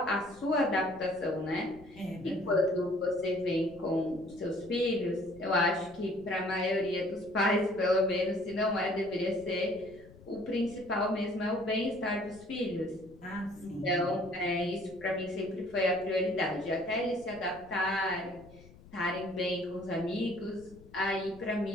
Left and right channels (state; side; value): noise; left; rumble, 22 dB below the sound